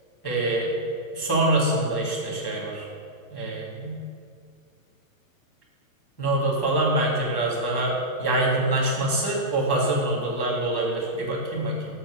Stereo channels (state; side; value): late; right; 1.1 ms